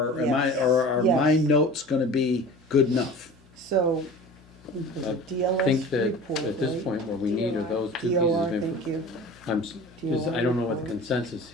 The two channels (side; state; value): both; normal; correlation 0.39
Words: Yes. are my Yes. notes gonna be good enough? So, I DLS think that report, at this right? point, what we need are those two pieces DLR, of thank information. you. I don't know what the consensus